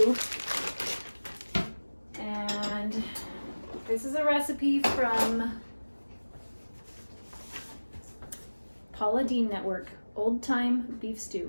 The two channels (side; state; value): both; inverted; correlation -1.00